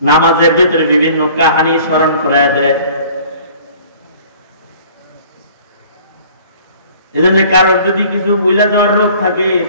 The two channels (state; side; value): inverted; both; correlation -0.51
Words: নামাজের ভিতরে বিভিন্ন কাহিনী স্মরণ করায় দেয়। এজন্য কারোর যদি কিছু বুঝলা যাওয়ার রোগ থাকে,